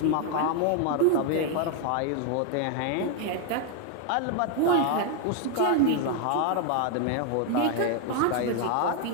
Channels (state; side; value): different; both; correlation 0.00